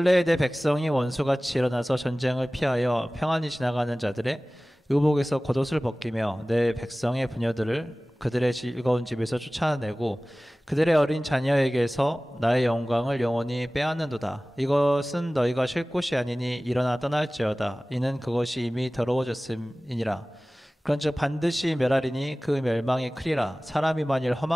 내 백성이 원수같이 일어나서 전쟁을 피하여 평안히 지나가는 자들의 의복에서 겉옷을 벗기며 내 백성의 부녀들을 그들의 즐거운 집에서 쫓아내고 그들의 어린 자녀에게서 나의 영광을 영원히 빼앗는도다. 이것은 너희가 쉴 곳이 아니니 일어나 떠날지어다. 이는 그것이 이미 더러워졌음이니라. 그런즉 반드시 멸하리니 그 멸망이 크리라. 사람이 만일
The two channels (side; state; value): both; normal; correlation 0.98